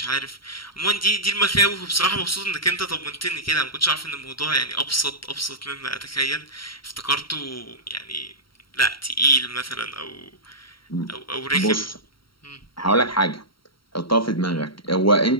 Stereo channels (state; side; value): late; right; 0.74 ms